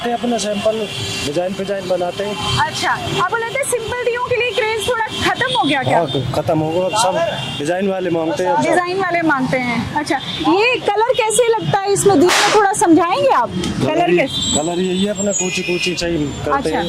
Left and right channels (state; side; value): identical; both; correlation 1.00